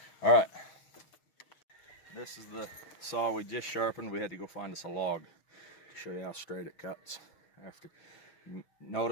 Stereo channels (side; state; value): right; late; 6.3 ms